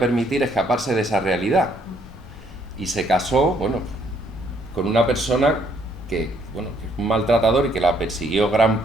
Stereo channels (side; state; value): both; normal; correlation 0.68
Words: escaparse de esa realidad. Y se casó, bueno, con una persona que, bueno, que es un maltratador y que la persiguió gran